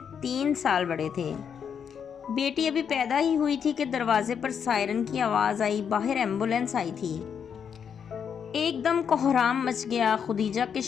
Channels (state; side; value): quieter; right; 7.4 dB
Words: 3 سال بڑے تھے۔ بیٹی ابھی پیدا ہی ہوئی تھی کہ دروازے پر سائرن کی آواز آئی۔ باہر ایمبولینس آئی تھی۔ ایک دم کوہرام مچ گیا۔ خدیجہ کے